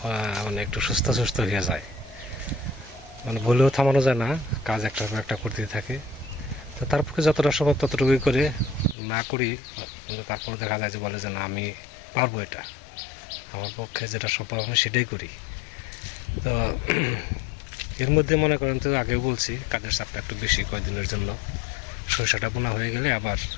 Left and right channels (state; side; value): drops out; right; at 9.0 s